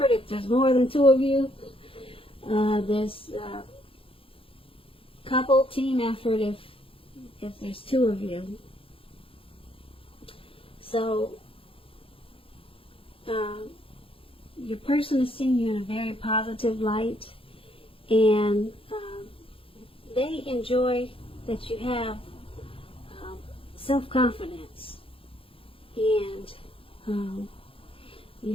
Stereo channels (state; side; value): late; right; 0.27 ms